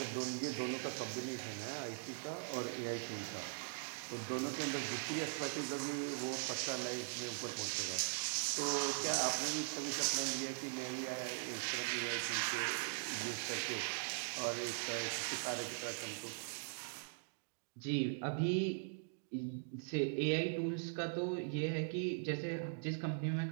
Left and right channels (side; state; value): left; silent; digital silence